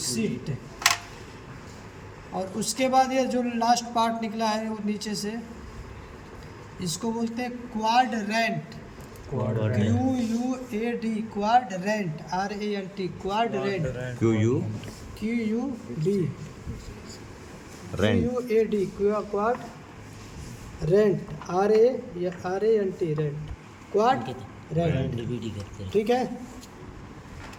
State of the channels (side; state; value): both; identical; correlation 1.00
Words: और उसके बाद ये जो लास्ट पार्ट निकला है वो नीचे से, इसको बोलते हैं quadrant. QUAD, quadrant, RANT, quadrant. QUD, QUAD, quad rent, RANT, rent, quad rent. ठीक है,